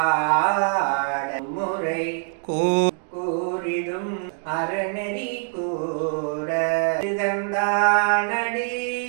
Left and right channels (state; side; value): silent; left; 63 dB below the other